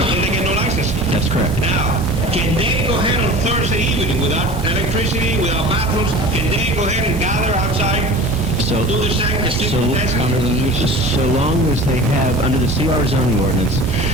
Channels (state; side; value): normal; both; correlation 0.39